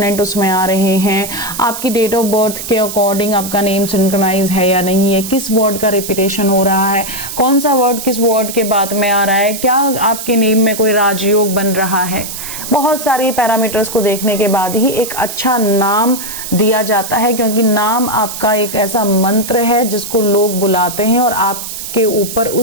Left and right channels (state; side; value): noise; right; hiss, 8 dB below the sound